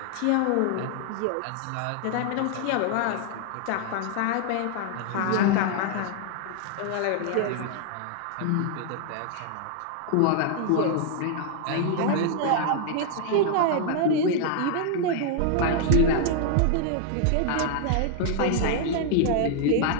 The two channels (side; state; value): both; different; correlation 0.00